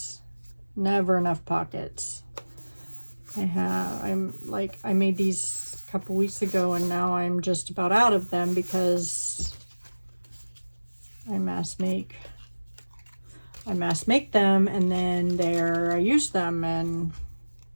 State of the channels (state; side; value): inverted; both; correlation -1.00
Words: never enough pockets. I made these a couple weeks ago, and now I'm just about out of them because I mass make them, and then I use them and